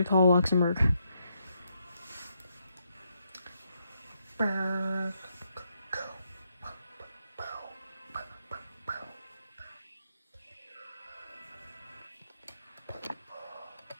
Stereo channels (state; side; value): inverted; both; correlation -0.79